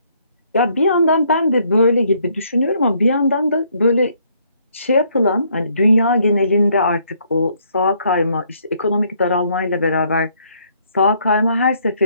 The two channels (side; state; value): both; inverted; correlation -0.68